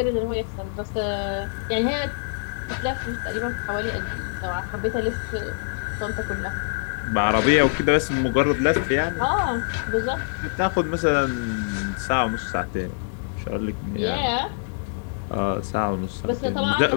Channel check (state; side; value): silent; right; digital silence